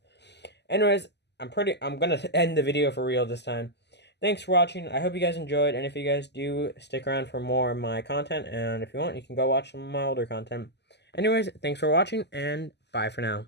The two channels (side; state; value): right; late; 0.50 ms